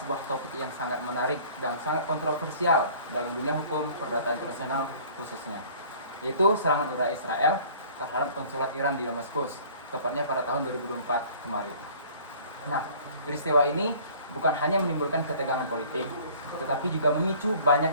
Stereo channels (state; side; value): inverted; both; correlation -0.50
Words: sebuah topik yang sangat menarik dan sangat kontroversial dalam dunia hukum perdata internasional khususnya, yaitu serangan udara Israel terhadap konsulat Iran di Damaskus, tepatnya pada tahun 2024 kemarin. Nah, peristiwa ini bukan hanya menimbulkan ketegangan politik, tetapi juga memicu